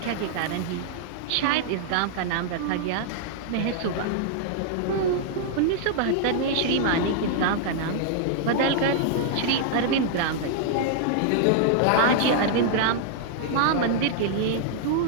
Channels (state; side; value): different; both; correlation -0.01